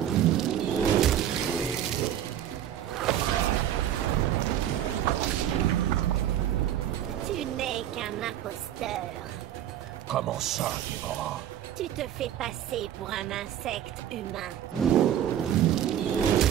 Tu n'es qu'un imposteur. Comment ça, Déborah? Tu te fais passer pour un insecte humain.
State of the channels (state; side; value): quieter; left; 10.9 dB